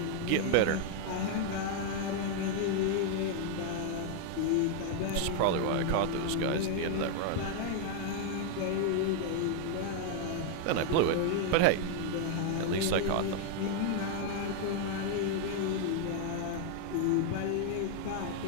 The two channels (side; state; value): both; different; correlation 0.00